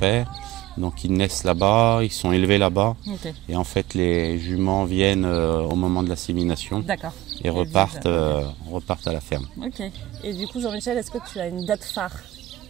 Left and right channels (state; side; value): quieter; left; 16.2 dB